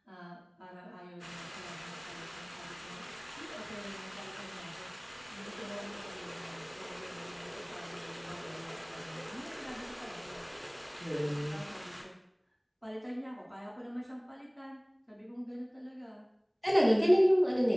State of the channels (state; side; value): identical; both; correlation 1.00